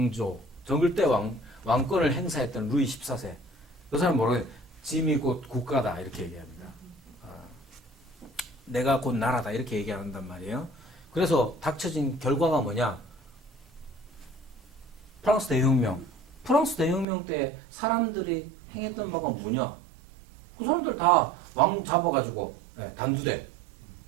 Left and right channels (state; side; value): drops out; left; at 17.1 s